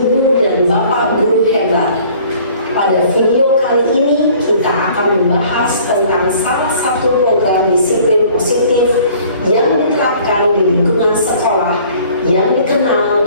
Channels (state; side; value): inverted; both; correlation -0.54